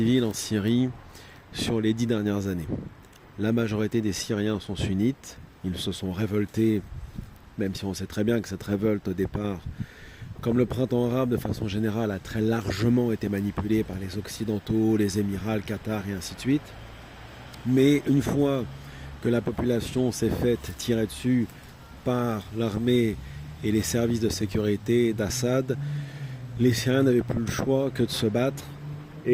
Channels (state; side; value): identical; both; correlation 1.00